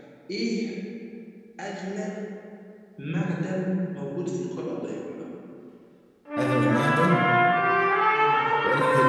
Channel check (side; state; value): both; identical; correlation 1.00